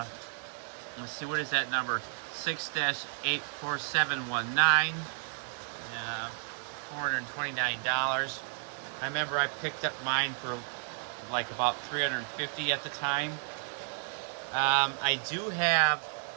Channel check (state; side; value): silent; left; 56 dB below the other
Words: see, what is that number? 6-84719. $429. I remember I picked up mine for like about $350 at the time. I do have